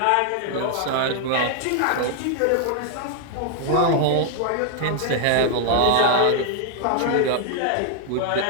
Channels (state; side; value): different; both; correlation -0.01